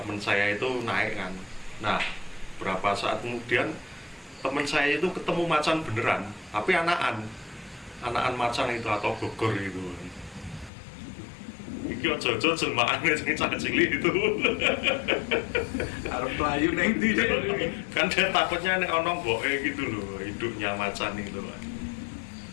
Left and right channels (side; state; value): right; drops out; at 10.7 s